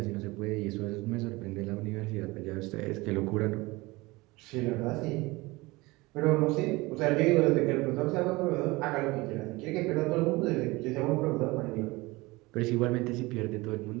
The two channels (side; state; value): left; quieter; 22.2 dB